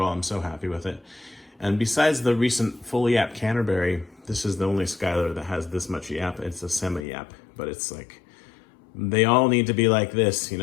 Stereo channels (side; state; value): right; drops out; at 7.1 s